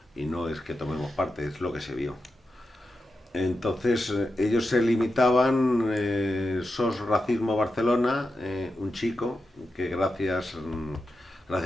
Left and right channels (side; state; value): both; normal; correlation 0.89